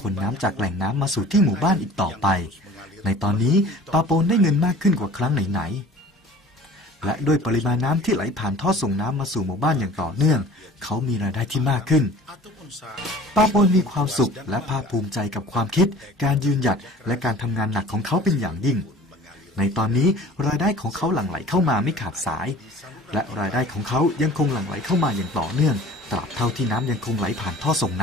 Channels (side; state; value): both; normal; correlation 0.45